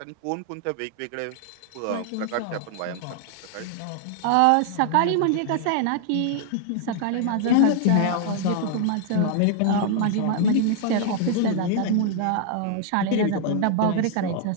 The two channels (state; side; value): different; both; correlation 0.00